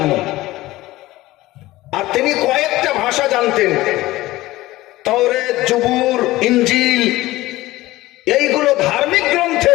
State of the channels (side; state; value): right; quieter; 17.7 dB